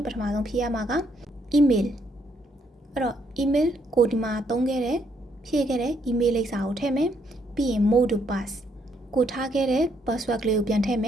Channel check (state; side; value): normal; both; correlation 0.72